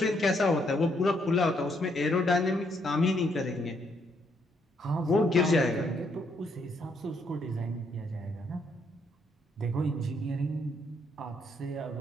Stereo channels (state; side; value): normal; both; correlation 0.73